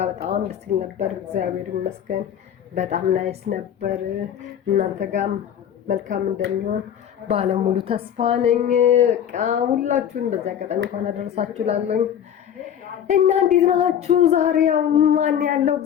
በጣም ደስ ይል ነበር እግዚአብሔር ይመስገን። በጣም ናይስ ነበር። እናንተ ጋርም መልካም እንደሚሆን ባለሙሉ ተስፋ ነኝ። በቃ ሁላችሁም በዛ አጋጣሚ እንኳን አደረሳችሁ ላለኝ እና እንዴት ናችሁ? ዛሬ ያው ማን ያለው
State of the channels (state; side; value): quieter; right; 9.4 dB